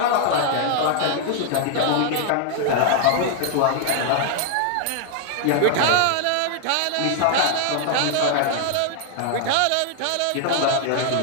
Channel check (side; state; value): both; different; correlation 0.00